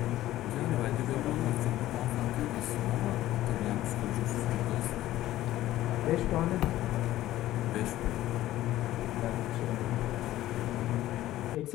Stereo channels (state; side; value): quieter; right; 14.7 dB